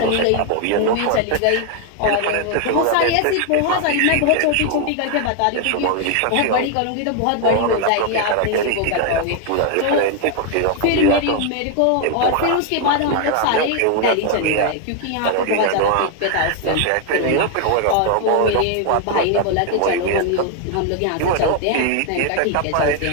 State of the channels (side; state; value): both; different; correlation 0.01